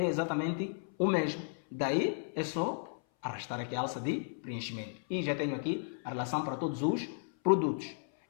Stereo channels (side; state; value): right; silent; 55 dB below the other